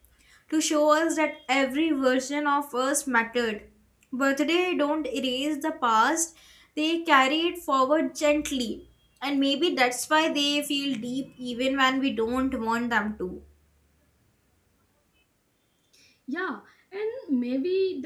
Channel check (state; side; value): identical; both; correlation 1.00